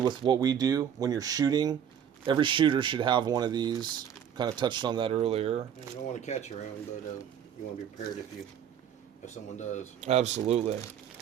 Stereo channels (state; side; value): quieter; left; 8.9 dB